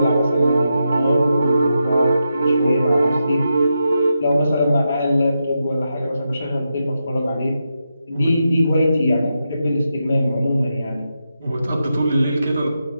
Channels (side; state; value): both; inverted; correlation -0.86